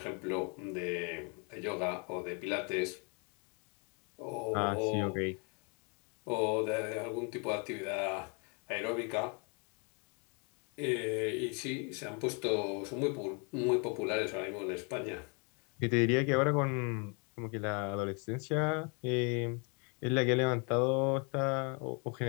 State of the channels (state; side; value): quieter; right; 35.3 dB